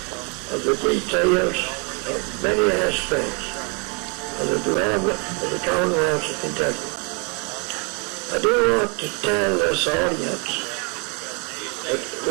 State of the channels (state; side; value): quieter; left; 34.4 dB